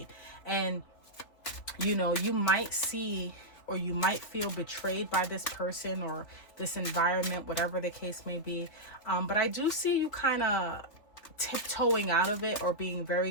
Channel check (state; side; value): late; right; 3.1 ms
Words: And, you know, you might see or you might feel betrayed by this person or this environment, whatever the case may be. But I do see you kind of tiptoeing out of it or being very